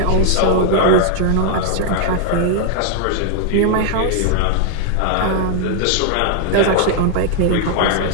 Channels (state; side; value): different; both; correlation 0.00